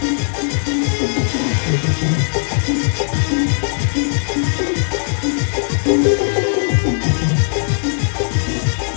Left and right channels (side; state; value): right; silent; digital silence